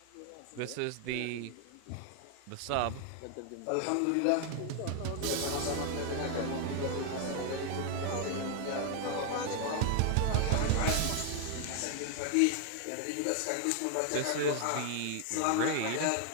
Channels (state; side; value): different; both; correlation 0.00